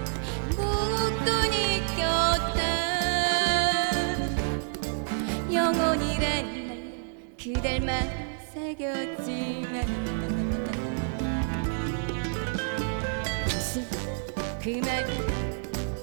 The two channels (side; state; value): left; silent; digital silence